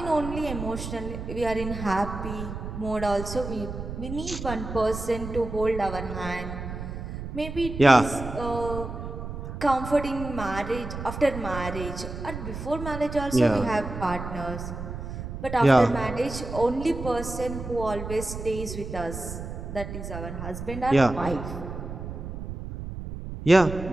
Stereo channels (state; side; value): noise; right; rumble, 8 dB below the sound